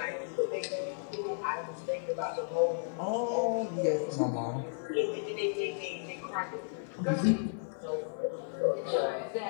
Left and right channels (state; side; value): silent; right; 55 dB below the other